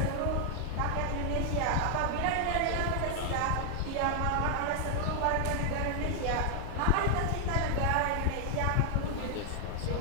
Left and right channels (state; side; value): different; both; correlation 0.00